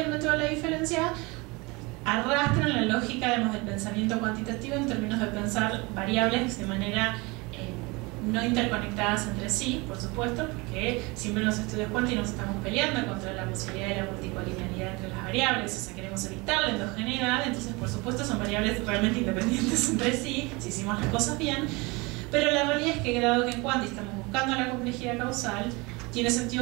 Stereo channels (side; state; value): left; quieter; 25.7 dB